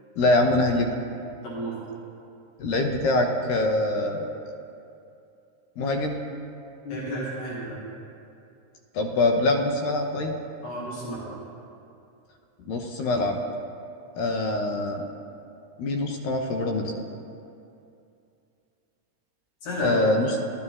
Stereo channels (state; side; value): late; right; 13 ms